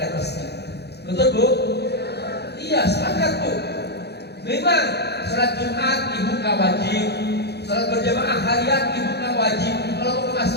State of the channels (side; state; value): right; late; 0.48 ms